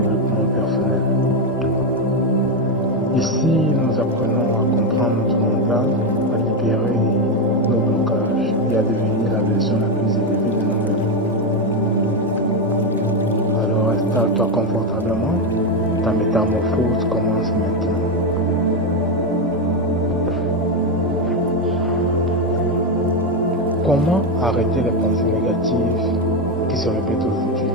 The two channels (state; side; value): normal; both; correlation 0.08